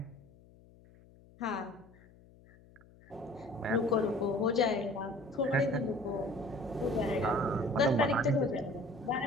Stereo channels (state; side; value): noise; left; hum, 25 dB below the sound